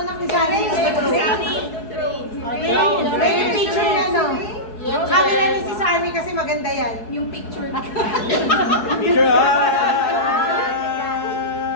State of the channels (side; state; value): right; late; 4.7 ms